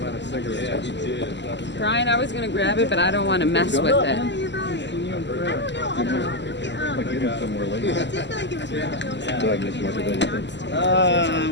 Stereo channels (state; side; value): late; right; 0.52 ms